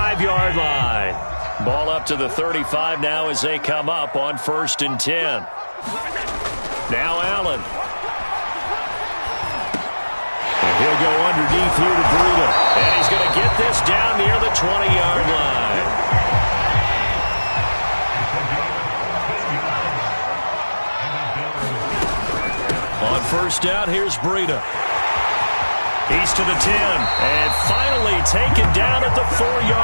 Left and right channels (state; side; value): inverted; both; correlation -1.00